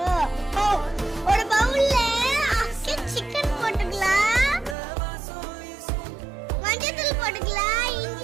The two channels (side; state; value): left; drops out; at 4.8 s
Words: ஒரு பவுல்ல சிக்கன் போட்டுக்கலாம், மஞ்சள் போட்டுக்கலாம்,